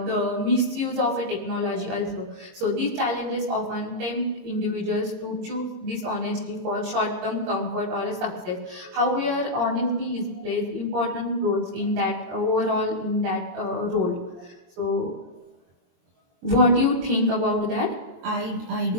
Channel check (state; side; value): late; left; 23 ms